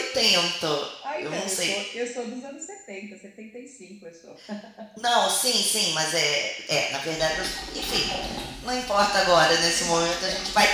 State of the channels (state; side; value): identical; both; correlation 1.00